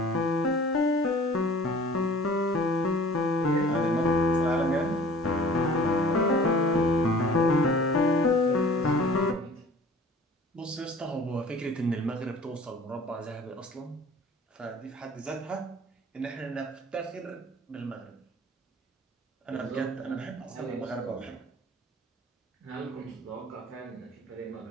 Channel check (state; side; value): normal; both; correlation 0.47